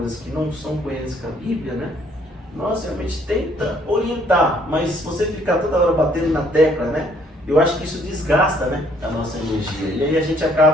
que não são coerentes com a Bíblia, né? Nós realmente tenta orientar, mas se você ficar toda hora batendo na tecla, né? Eu acho que isso desgasta, né, a nossa energia. E aí a gente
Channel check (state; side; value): normal; both; correlation 0.64